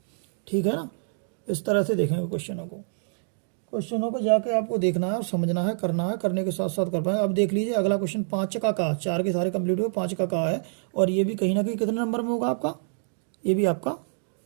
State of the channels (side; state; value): left; silent; digital silence